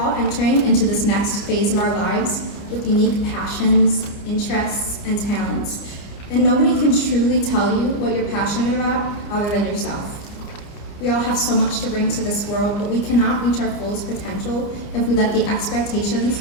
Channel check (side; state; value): right; late; 30 ms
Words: entering into this next phase of our lives with unique passions, interests, and talents, and nobody can truly tell you what you're passionate about other than yourself. We all have so much to bring to this world, but we cannot reach our fullest potential if we let the expectations